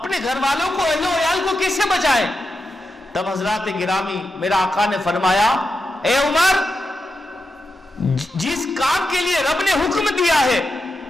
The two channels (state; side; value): normal; both; correlation 0.88